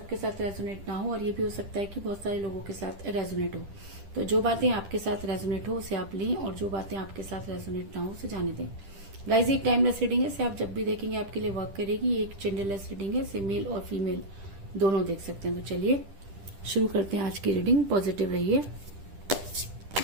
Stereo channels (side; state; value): left; late; 10 ms